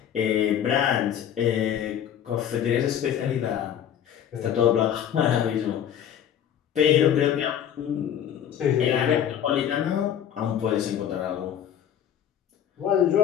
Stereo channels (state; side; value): quieter; right; 9.6 dB